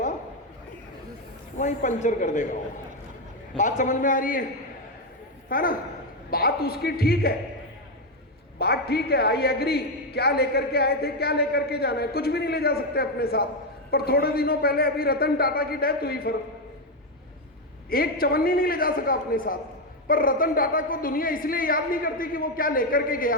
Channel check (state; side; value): normal; both; correlation 0.06